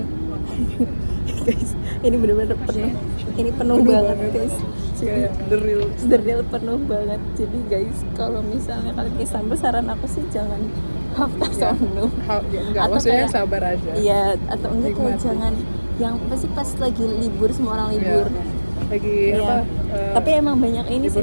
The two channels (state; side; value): inverted; both; correlation -1.00